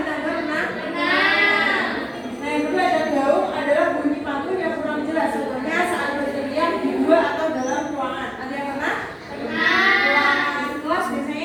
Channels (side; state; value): both; identical; correlation 1.00